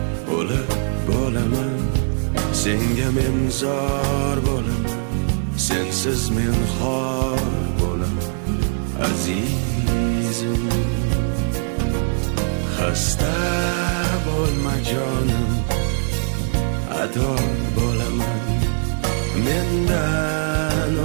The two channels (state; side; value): silent; left; digital silence